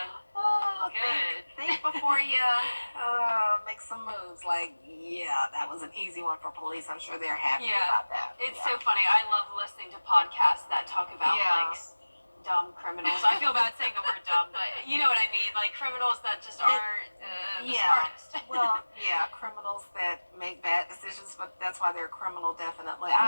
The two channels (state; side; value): inverted; both; correlation -1.00